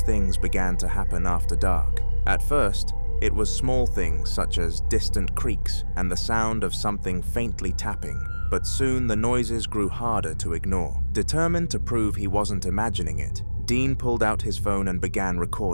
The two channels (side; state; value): both; inverted; correlation -1.00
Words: things began to happen after dark. At first, it was small things such as distant creaks and the sound of something faintly tapping, but soon the noises grew harder to ignore. Determined to prove he wasn't imagining it, Dean pulled out his phone and began